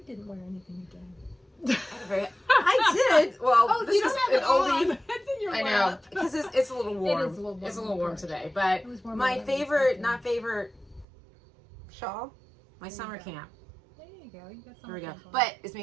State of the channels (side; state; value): left; drops out; at 11.1 s